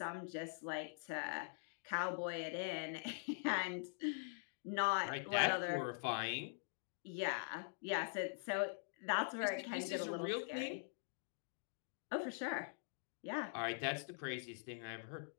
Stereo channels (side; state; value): right; silent; digital silence